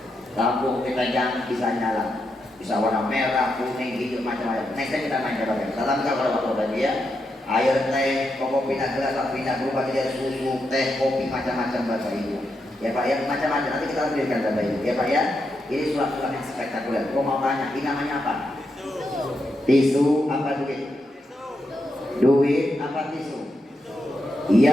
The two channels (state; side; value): normal; both; correlation 0.84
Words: Lampu kita jangan bisa nyala, bisa warna merah, kuning, hijau, macam-macam. Next time kita main coba. Tetap kalau waktu tadi ya, air teh, kopi pindah gelas, pindah berubah jadi susu, teh, kopi, macam-macam Bapak Ibu. Ya Pak ya, macam-macam. Nanti kita berikan Bapak Ibu. Ya Pak ya, ini sulap-sulap yang spektakuler. Kau mau tanya, ini namanya apa? Tisu apa duit? Duit apa tisu?